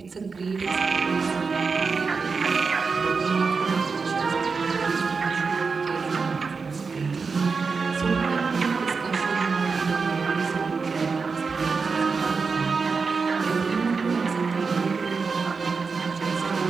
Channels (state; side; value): quieter; left; 4.9 dB